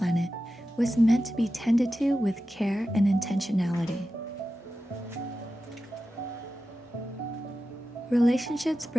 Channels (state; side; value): normal; both; correlation 0.92